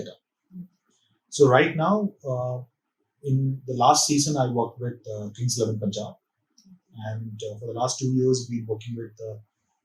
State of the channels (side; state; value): both; identical; correlation 1.00